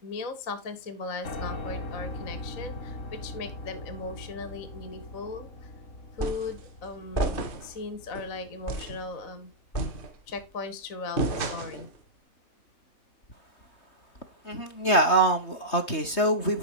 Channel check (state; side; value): late; right; 3.2 ms